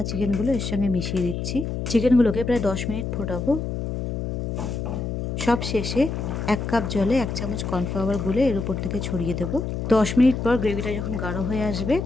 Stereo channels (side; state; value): left; noise; hum, 3 dB below the sound